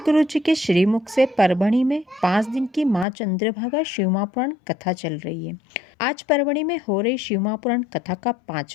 जी के श्रीमुख से परभणी में 5 दिन की माँ चंद्रभागा शिव महापुराण कथा चल रही है। आज परभणी में हो रही शिव महापुराण कथा का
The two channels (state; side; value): drops out; right; at 3.1 s